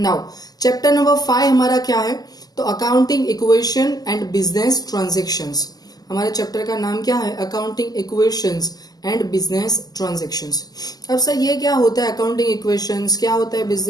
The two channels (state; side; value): late; right; 0.18 ms